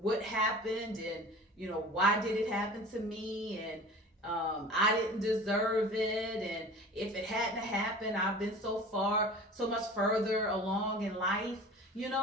happened, and, why did it happen to me, and I didn't deserve it, and if it hadn't happened, I've been so much further along in life,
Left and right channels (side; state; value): both; normal; correlation 0.40